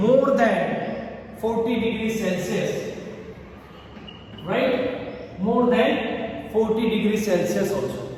than 40 degrees Celsius. Right? More than 40 degrees Celsius also.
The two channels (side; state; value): both; identical; correlation 1.00